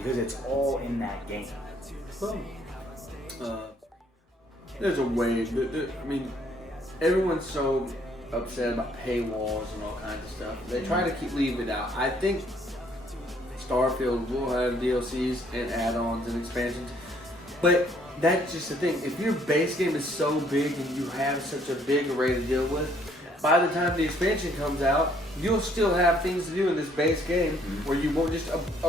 it's all in that game. Well, there's a way. I mean, everyone's so upset about paywalls and all kinds of stuff. They try to leave it out. I think Starfield will have DLCs and add-ons and expansions, but that's just the thing. If your base game is so big and you have such a big array to deal with, by the time the expansion comes out, you'll still have things to do in this base game where you won't just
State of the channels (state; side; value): normal; both; correlation 0.64